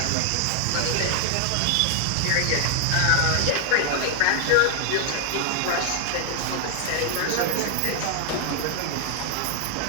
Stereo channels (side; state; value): both; different; correlation 0.00